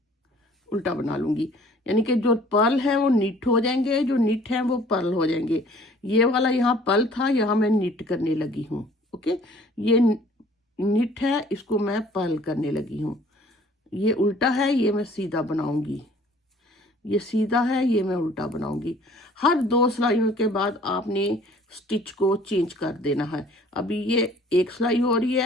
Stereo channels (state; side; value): normal; both; correlation 0.54